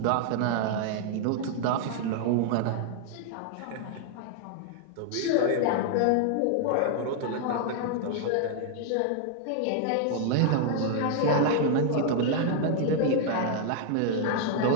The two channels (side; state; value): both; different; correlation 0.00